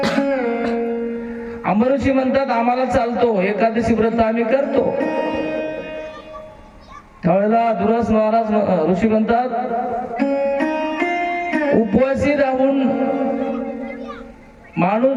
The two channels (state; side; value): identical; both; correlation 1.00